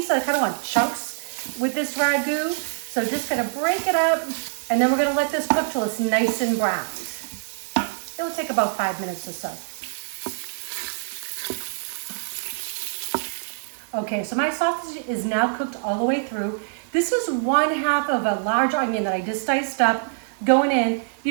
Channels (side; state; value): left; silent; 62 dB below the other